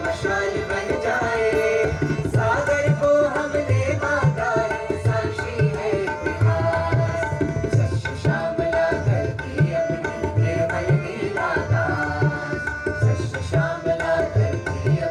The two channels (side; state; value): both; identical; correlation 1.00